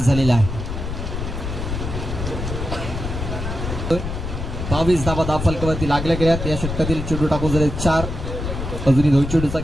झालेला आहे. 22 धावा धावफलकावरती लागल्या गेल्यात. या षटकातील चेंडू टाकून झाले 4. अजूनही 2 चेंडूचा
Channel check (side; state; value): left; noise; rumble, 5 dB below the sound